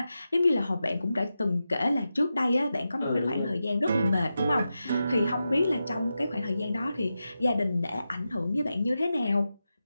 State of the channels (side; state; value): both; inverted; correlation -0.90